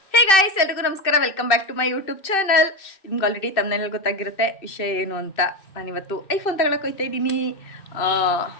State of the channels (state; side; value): late; right; 2.6 ms